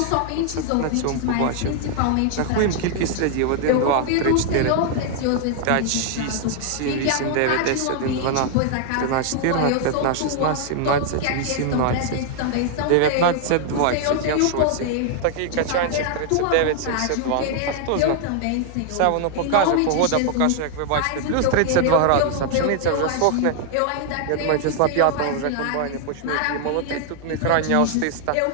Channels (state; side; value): different; both; correlation 0.00